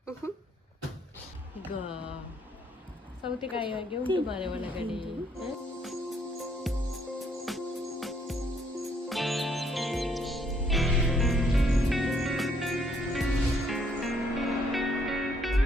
ಈಗ ಸೌತೆಕಾಯಿ ಹಾಗೆ ಉಂಟು ಮಾರೆ ಒಳಗಡೆ.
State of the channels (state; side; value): normal; both; correlation 0.68